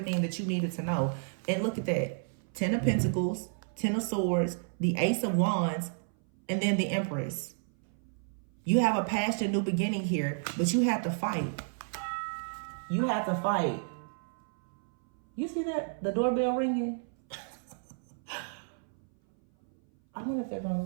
that you needed to know. And look at that. 10 of Pentacles, 10 of Swords, the Ace of Wands, and then the Empress. You have a past and new beginning here, but you have to fight. You have to fight. You see that? The doorbell ringing? I wonder if they're going to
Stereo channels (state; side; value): silent; left; 57 dB below the other